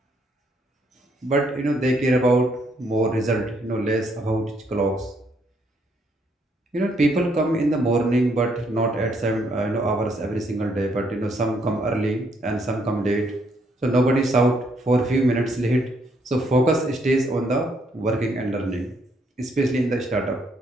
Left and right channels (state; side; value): normal; both; correlation 0.71